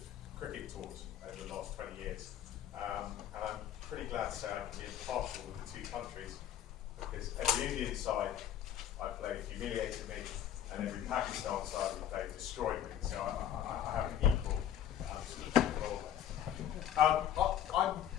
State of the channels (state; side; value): quieter; right; 10.4 dB